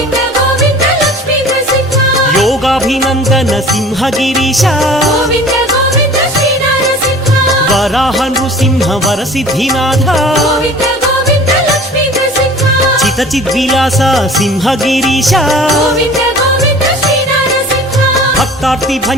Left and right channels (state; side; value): normal; both; correlation 0.45